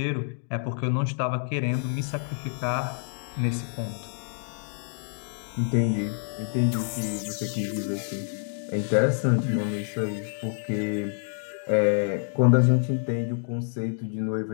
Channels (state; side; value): silent; right; digital silence